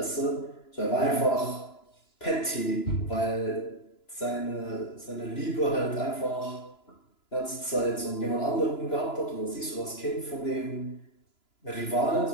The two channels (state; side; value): late; right; 2.9 ms